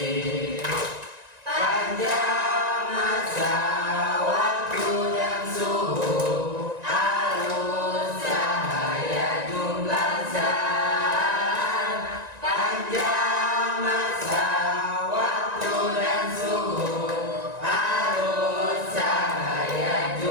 Panjang masa waktu dan suhu, arus cahaya jumlah zat. Panjang masa waktu dan suhu, arus cahaya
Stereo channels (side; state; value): left; late; 1.9 ms